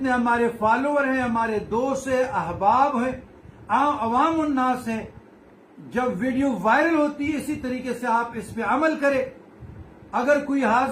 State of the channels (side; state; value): both; identical; correlation 1.00